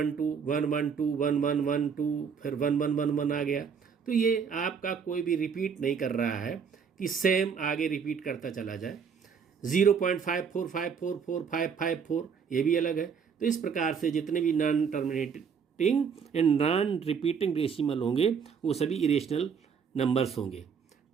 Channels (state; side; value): quieter; left; 6.5 dB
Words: 112 1112 फिर 1111 आ गया। तो ये आपका कोई भी रिपीट नहीं कर रहा है कि सेम आगे रिपीट करता चला जाए। 0.54544554 ये भी अलग है। तो इस प्रकार से जितने भी non terminating and non repeating decimal होंगे वो सभी इरेशनल नंबर्स होंगे।